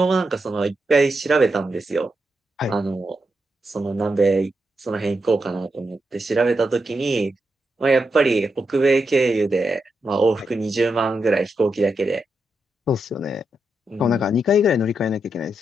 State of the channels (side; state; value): both; normal; correlation 0.85